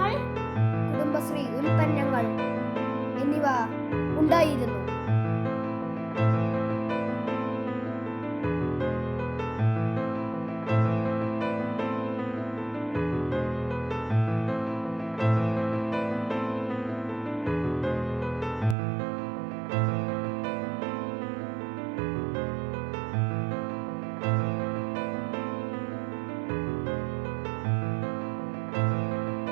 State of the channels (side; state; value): left; drops out; at 18.8 s